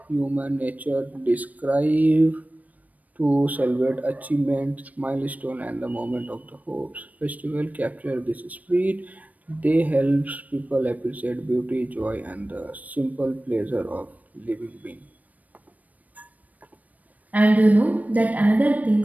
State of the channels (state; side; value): late; left; 0.074 ms